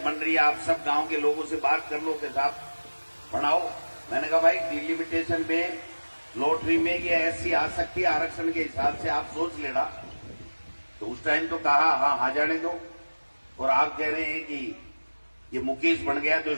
रही है, आप सब गांव के लोगों से बात कर लो कि साहब बनाओ। मैंने कहा भाई डिलिमिटेशन में, लॉटरी में ये ऐसी आ सकती है, आरक्षण के हिसाब से आप सोच लेना। तो उस टाइम तो कहा हाँ जाने दो, और आप कह रहे हैं कि ये मुकेश बन गया तो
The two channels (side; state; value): both; inverted; correlation -1.00